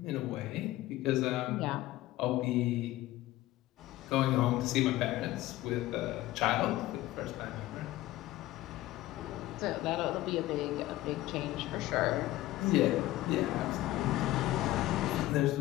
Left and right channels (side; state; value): right; quieter; 16.2 dB